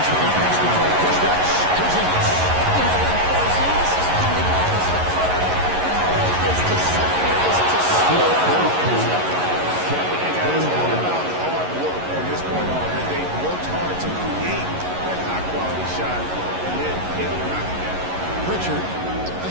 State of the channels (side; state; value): left; late; 11 ms